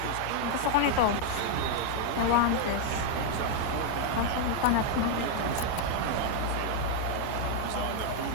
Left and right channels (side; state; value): both; different; correlation 0.00